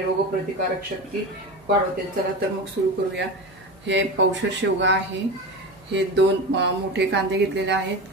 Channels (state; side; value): noise; right; hum, 26 dB below the sound